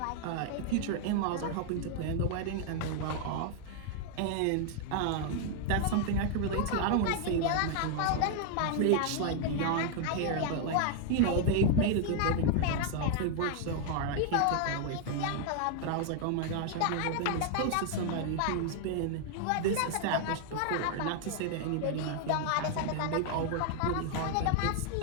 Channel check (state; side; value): different; both; correlation 0.00